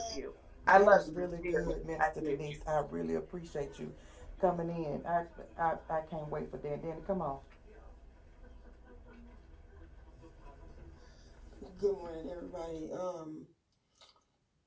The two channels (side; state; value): both; identical; correlation 1.00